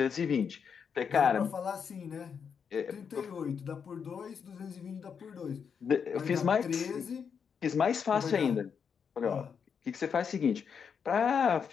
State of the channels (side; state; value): right; quieter; 6.7 dB